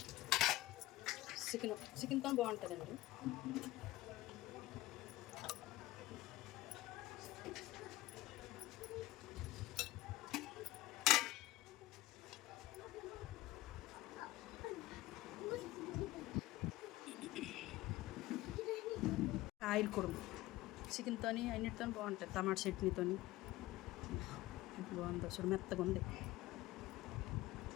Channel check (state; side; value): quieter; right; 17.6 dB